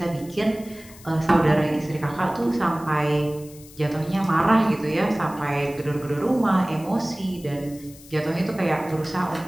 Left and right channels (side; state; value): left; noise; hiss, 21 dB below the sound